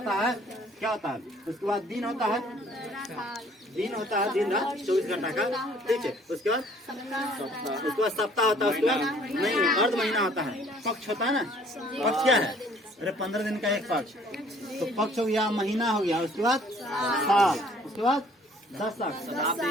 है, क्या होता है? उसके बाद दिन होता है, दिन होता है, दिन रात 24 घंटा का, ठीक है। उसके बाद सप्ताह होता है, उसके बाद नहीं, अर्ध महीना होता है, पक्ष होता है ना। पक्ष क्या है? अरे 15 दिन का एक पक्ष, तो पक्ष हो गया, महीना हो गया, उसके बाद साल, उसके बाद दशक,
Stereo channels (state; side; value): normal; both; correlation 0.57